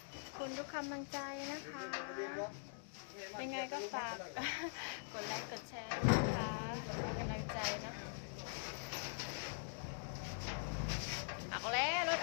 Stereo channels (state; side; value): silent; right; digital silence